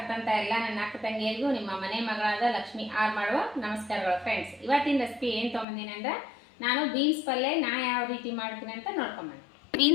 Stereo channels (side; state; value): right; drops out; at 5.7 s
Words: ಎಲ್ಲ ನನ್ನ ಅಕ್ಕ ತಂಗಿಯರಿಗೂ ನಿಮ್ಮ ಮನೆ ಮಗಳಾದ ಲಕ್ಷ್ಮಿ ಆರ್ ಮಾಡುವ ನಮಸ್ಕಾರಗಳು. ಫ್ರೆಂಡ್ಸ್, ಇವತ್ತಿನ ರೆಸಿಪಿ ಏನು ತೊಗೊಂಡಿದ್ದೀನಿ ಅಂದ್ರೆ ನಾನು ಬೀನ್ಸ್ ಪಲ್ಯ ಯಾವ ರೀತಿ ಮಾಡ್ತೀನಿ ಅಂತ ನೋಡ್ಕೊಂಬಂದು.